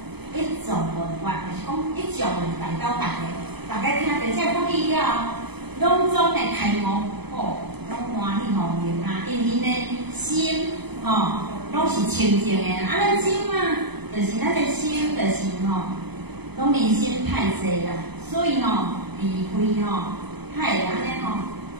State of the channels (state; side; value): late; left; 0.98 ms